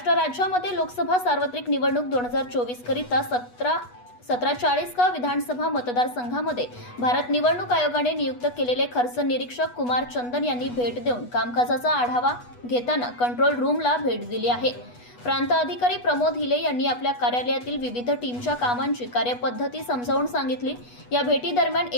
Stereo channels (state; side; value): late; right; 8.2 ms